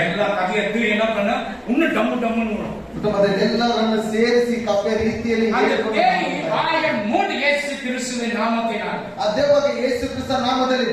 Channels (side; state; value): both; identical; correlation 1.00